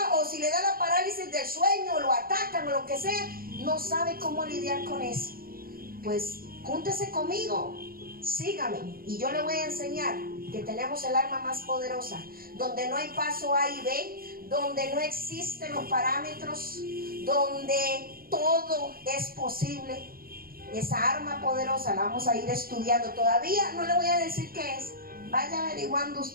o si le da la parálisis del sueño, o lo atacan, o lo que sea, no sabe cómo lidiar con eso. Pues júntese conmigo, sígame, y yo le voy a enseñar que tenemos el arma más poderosa, donde no hay paso A y B, donde no existen los parámetros, donde todo es posible. Esa arma poderosa la vamos a ir estudiando. Todavía no le voy a decir qué es, vaya averiguando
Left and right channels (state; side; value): late; left; 0.43 ms